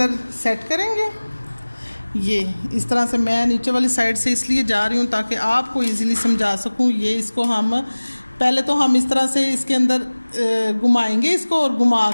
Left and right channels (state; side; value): inverted; both; correlation -1.00